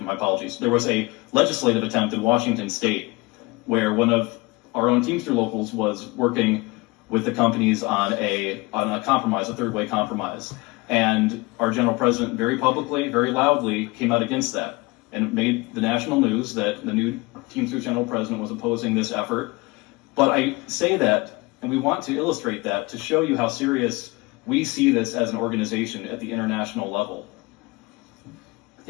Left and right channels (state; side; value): quieter; right; 24.1 dB